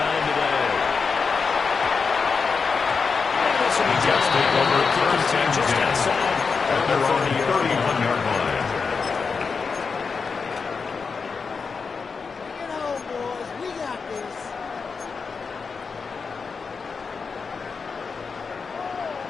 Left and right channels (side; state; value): right; quieter; 5.2 dB